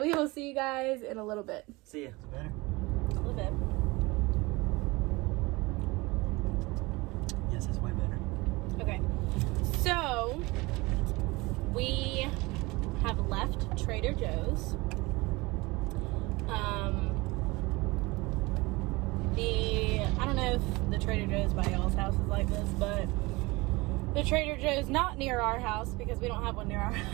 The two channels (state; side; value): quieter; left; 23.3 dB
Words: we will see you guys in a little bit. See ya. Is it better? A little bit. Yes, it's way better. Okay, so we have left Trader Joe's. I don't know if the Trader Joe's by y'all's house is like this, but the Trader Joe's not near our house because we don't have one near our